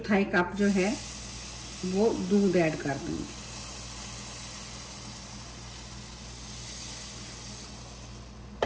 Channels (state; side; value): identical; both; correlation 1.00